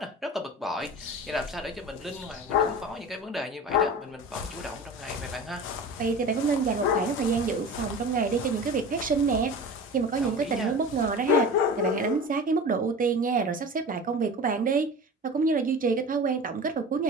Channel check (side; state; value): both; normal; correlation 0.34